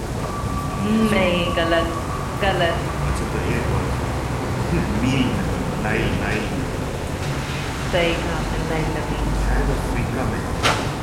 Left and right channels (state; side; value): identical; both; correlation 1.00